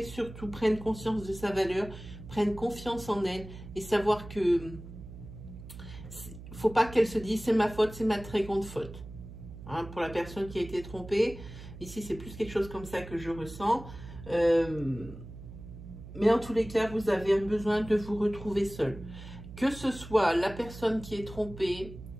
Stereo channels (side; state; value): right; noise; hum, 14 dB below the sound